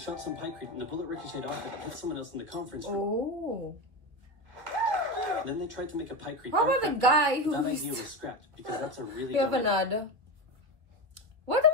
some pykrete and the bullet ricocheted off it and hit someone else in the conference room. Then they tried to make a pykrete. How about the guy who... That idea was scrapped because that's a really... We have another. What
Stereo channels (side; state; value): left; late; 2.4 ms